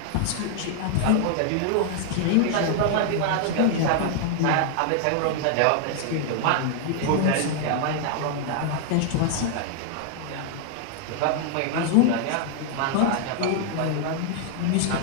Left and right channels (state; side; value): different; both; correlation 0.00